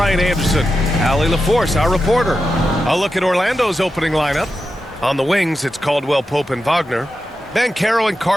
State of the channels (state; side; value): normal; both; correlation 0.89